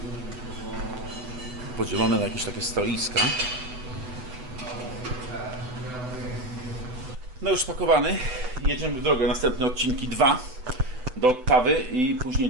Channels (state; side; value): late; left; 7.9 ms